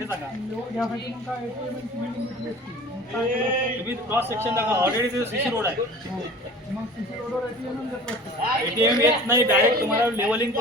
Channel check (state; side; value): normal; both; correlation 0.42